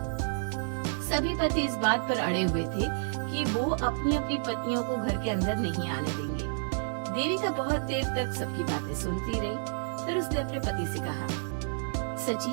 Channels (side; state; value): left; silent; digital silence